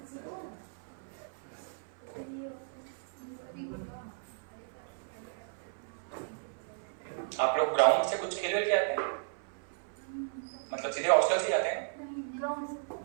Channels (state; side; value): silent; left; 55 dB below the other